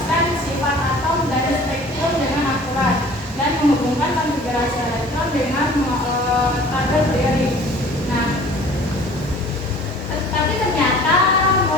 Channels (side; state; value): both; normal; correlation 0.48